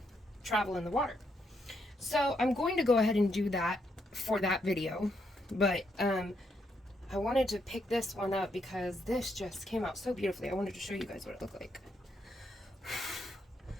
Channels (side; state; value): both; normal; correlation 0.77